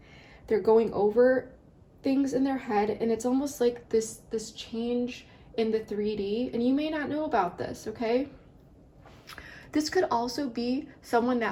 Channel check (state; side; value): identical; both; correlation 1.00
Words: They're going over things in their head, and it's almost like this change in the 3D, and you may not know about this, okay? This could also be someone